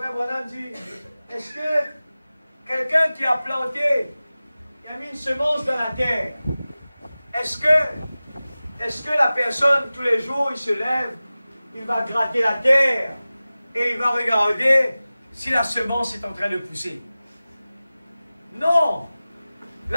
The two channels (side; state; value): both; inverted; correlation -0.97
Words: Branham dit, est-ce que quelqu'un qui a planté, qui a mis une semence dans la terre, est-ce que la personne, tous les jours, il se lève, il va gratter la terre et il va regarder si la semence est en train de pousser? Non.